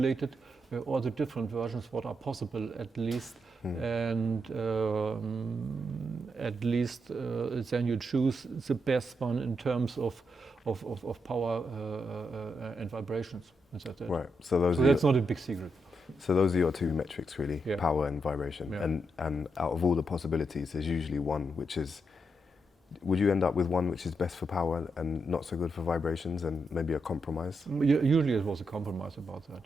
all the different versions what are possible at least, and at least then you choose the best one in terms of power and vibrations. Right. So that's not a big secret. So those are your two metrics really, yeah. Power and vibration. Yeah. And out of all the possibilities, there's usually one which is, would you end up with one which is best for power and not so good for vibrations, and maybe a compromise? Usually it was a compromise about that,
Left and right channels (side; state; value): both; normal; correlation 0.82